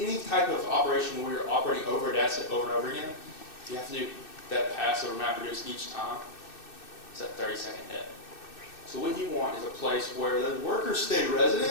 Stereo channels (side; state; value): right; late; 2.6 ms